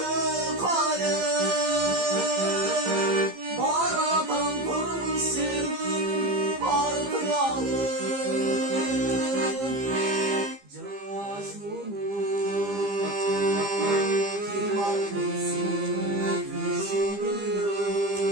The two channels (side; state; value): left; late; 15 ms